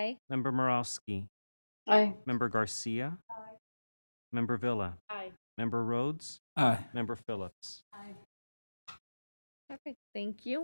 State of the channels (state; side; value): inverted; both; correlation -1.00